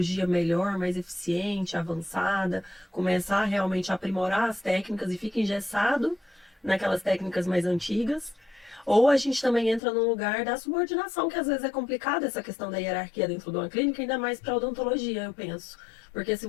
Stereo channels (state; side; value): drops out; right; at 9.8 s